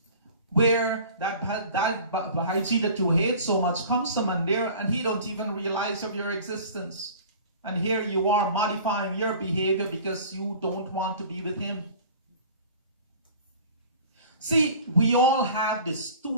where that Bahaji that you hate so much comes to Mandir and he don't even realize of your existence. And here you are modifying your behavior because you don't want to be with him. See, we all have this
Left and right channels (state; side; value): inverted; both; correlation -0.43